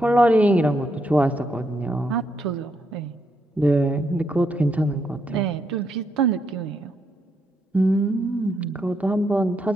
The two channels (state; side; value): normal; both; correlation 0.78